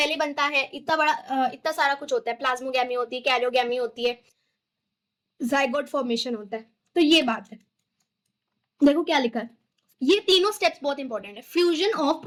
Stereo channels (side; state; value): both; identical; correlation 1.00